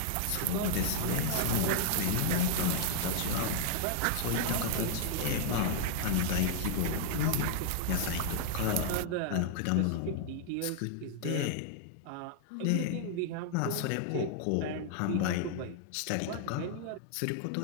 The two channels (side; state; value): both; different; correlation -0.01